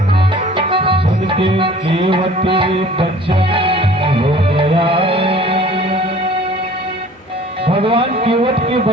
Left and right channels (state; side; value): normal; both; correlation 0.49